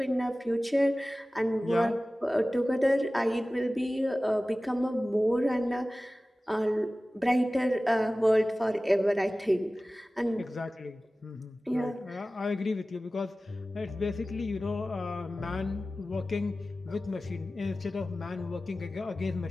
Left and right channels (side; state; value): both; normal; correlation 0.96